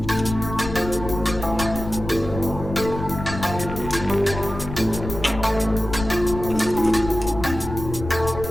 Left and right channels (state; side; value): noise; left; rumble, 8 dB below the sound